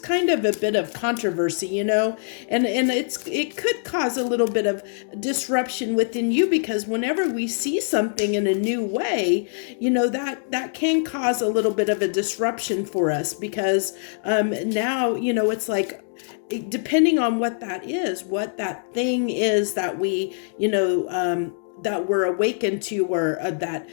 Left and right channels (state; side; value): silent; right; digital silence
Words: of a bit of controversy, and it could cause a little bit of disruption within you, because whenever we see something in a new way, that can cause a little bit of a disruption for us, because now, it's like, depending on what that is, what that thing is that we, that we're awakened to, or that